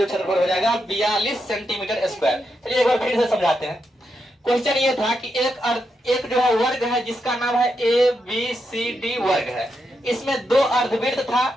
क्षेत्रफल हो जाएगा 42 सेंटीमीटर स्क्वायर। चलिए एक बार फिर से समझाते हैं। क्वेश्चन ये था कि एक जो है वर्ग है जिसका नाम है ABCD वर्ग है, इसमें 2 अर्धवृत्त था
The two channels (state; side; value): normal; both; correlation 0.84